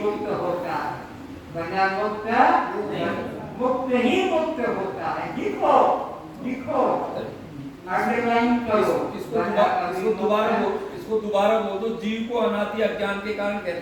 मुक्त होता है। बड़ा मुक्त ही मुक्त होता है। लिखो लिखो, अंडरलाइन करो। इसको दोबारा बोल दो। जीव को अनादि अज्ञान के कारण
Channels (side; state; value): both; identical; correlation 1.00